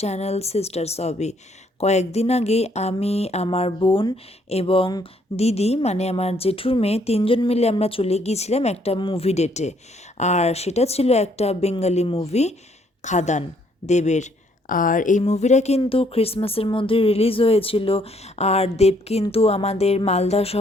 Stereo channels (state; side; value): normal; both; correlation 0.67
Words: channel sisters hobby. কয়েকদিন আগে আমি, আমার বোন এবং দিদি মানে আমার জেঠুর মেয়ে তিনজন মিলে আমরা চলে গিয়েছিলাম একটা মুভি ডেটে। আর সেটা ছিল একটা বেঙ্গলি মুভি, খাদান দেবের। আর এই মুভিটা কিন্তু ক্রিসমাসের মধ্যে রিলিজ হয়েছিল। আর দেব কিন্তু আমাদের মালদা